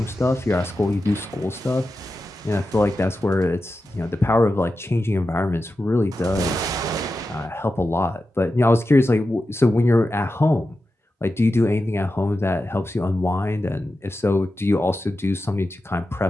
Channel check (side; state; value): both; normal; correlation 0.91